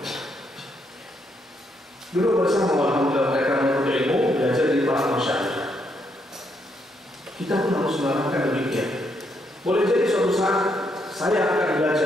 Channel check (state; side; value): normal; both; correlation 0.76